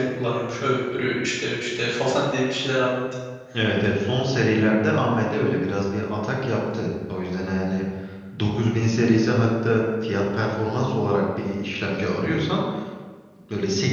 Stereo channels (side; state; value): both; identical; correlation 1.00